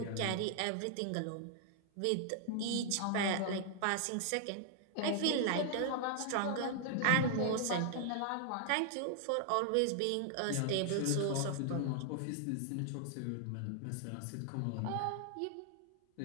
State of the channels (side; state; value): both; different; correlation 0.00